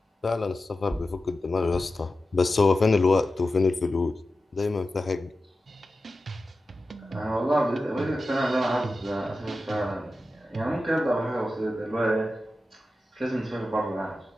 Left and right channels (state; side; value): normal; both; correlation 0.93